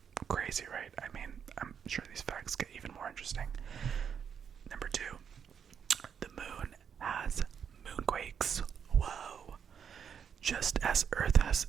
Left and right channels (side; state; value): left; quieter; 7.5 dB